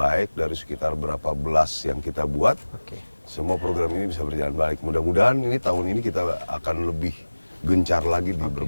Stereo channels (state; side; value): inverted; both; correlation -1.00